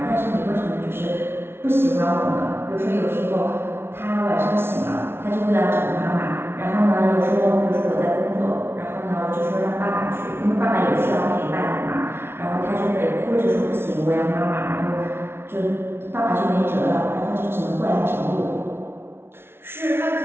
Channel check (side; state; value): left; late; 0.12 ms